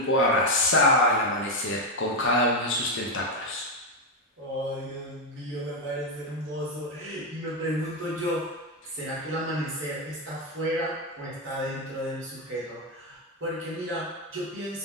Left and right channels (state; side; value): normal; both; correlation 0.06